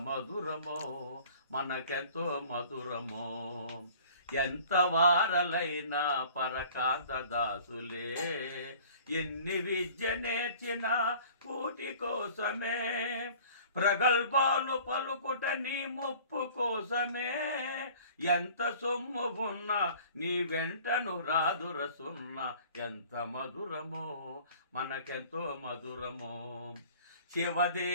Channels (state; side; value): inverted; both; correlation -0.49